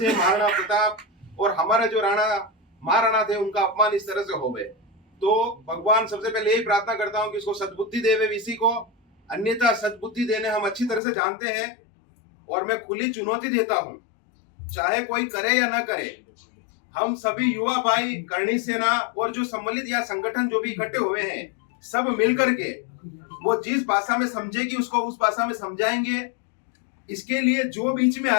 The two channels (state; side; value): drops out; right; at 11.0 s